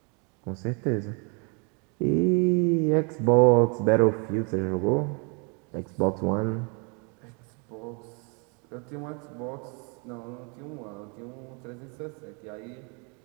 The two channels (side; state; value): left; quieter; 34.5 dB